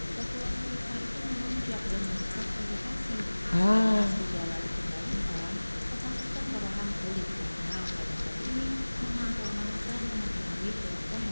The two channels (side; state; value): both; inverted; correlation -1.00